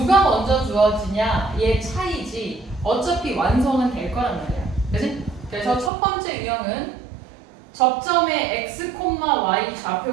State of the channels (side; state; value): left; drops out; at 5.9 s